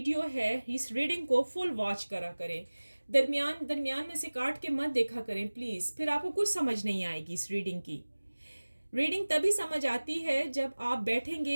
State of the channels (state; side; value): inverted; both; correlation -1.00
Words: है इस रीडिंग को फुल वॉच करा करें, दरमियान में से काट के मत देखा करें प्लीज़, फिर आपको कुछ समझ नहीं आएगी इस रीडिंग की। रीडिंग तभी समझ आती है जब आप